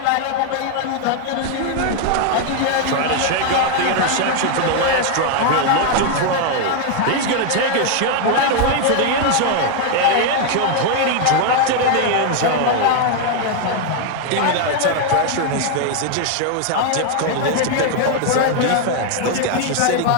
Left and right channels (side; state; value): both; different; correlation 0.01